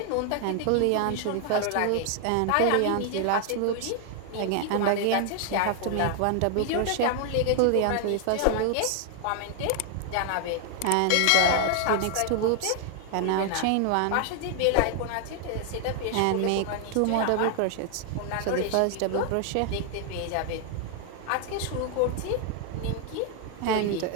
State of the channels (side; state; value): both; different; correlation 0.00